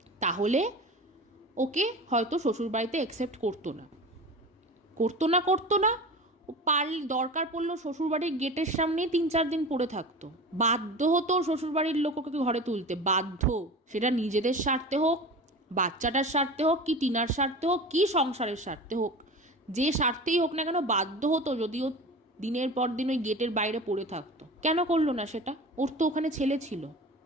তাহলে ওকে হয়তো শ্বশুরবাড়িতে অ্যাকসেপ্ট করতো না, ও দরকার পড়লো শ্বশুরবাড়ির গেটের সামনেই 3-4 দিন পড়ে থাকতো। বাধ্য হতো শ্বশুরবাড়ির লোক ওকে ঘরে তুলতে, বাধ্য। সেটা নিজেদের স্বার্থে হোক, বাচ্চাটার স্বার্থে হোক, কি টিনার স্বার্থে হোক, কি সংসারের স্বার্থে হোক, যে স্বার্থেই হোক না কেন বাধ্য হতো, যদিও দিনের পর দিন ওই গেটের বাইরে পড়ে থাকতো। কেন করলো না সেটা? ওর তো ওখানে ছেলে ছিল,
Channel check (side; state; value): both; normal; correlation 0.33